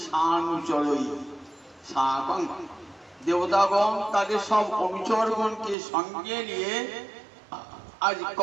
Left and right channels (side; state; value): left; drops out; at 5.8 s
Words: সানুচরই সাকং। দেবতাগণ তাদের সব অনুচরগণকে সঙ্গে নিয়ে আজ